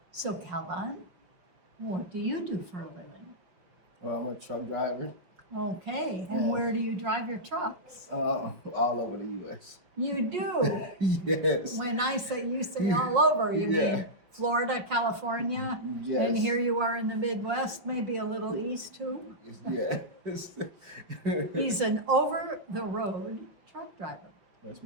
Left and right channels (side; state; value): left; late; 5.6 ms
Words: So, Kalvon, what do you do for a living? Well, I'm a truck driver Okay, and Yeah. where do you drive your trucks? all over the U.S. You do. Yes. When I say you say all over, you Yeah. mean Florida, California, Yes. and here you are in the Midwest, maybe a little east too. Yes. He's an over-the-road truck driver. Yes,